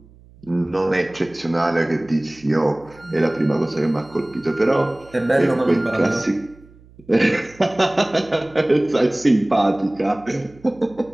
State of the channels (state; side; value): noise; right; hum, 25 dB below the sound